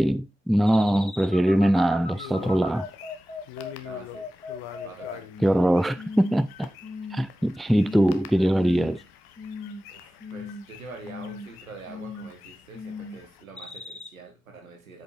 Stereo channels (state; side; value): normal; both; correlation 0.95